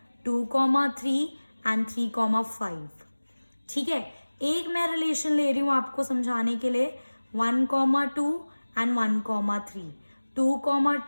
2,3 एंड 3,5, ठीक है। एक मैं रिलेशन ले रही हूँ आपको समझाने के लिए 1,2 एंड 1,3,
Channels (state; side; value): inverted; both; correlation -1.00